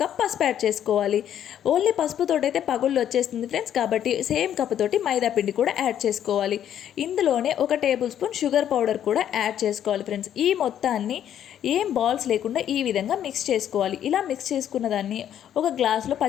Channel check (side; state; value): right; quieter; 10.2 dB